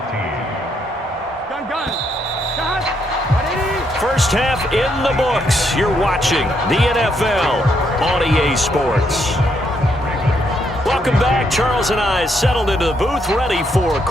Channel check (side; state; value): both; normal; correlation 0.75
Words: First half in the books. You're watching the NFL on EA Sports. Welcome back. Charles and I settled into the booth, ready for